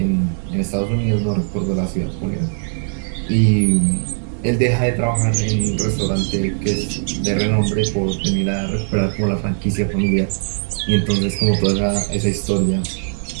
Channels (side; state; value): left; silent; digital silence